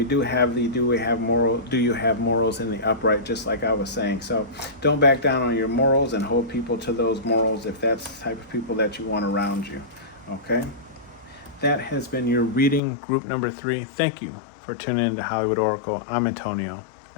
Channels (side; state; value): right; drops out; at 12.8 s